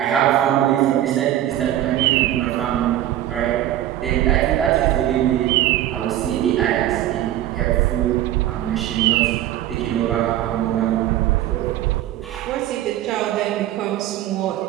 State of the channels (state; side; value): quieter; left; 13.0 dB